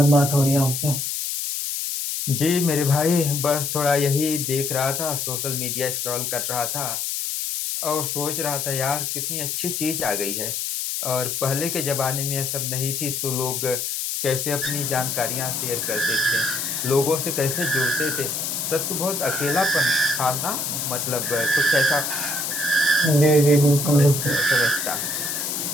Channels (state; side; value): noise; left; hiss, 2 dB below the sound